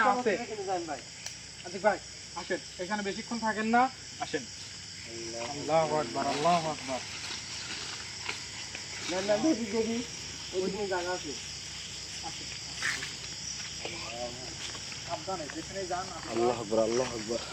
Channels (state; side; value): identical; both; correlation 1.00